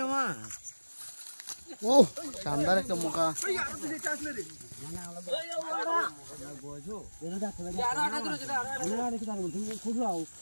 মাছ ও শানদার একটা মুখা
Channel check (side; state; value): both; inverted; correlation -1.00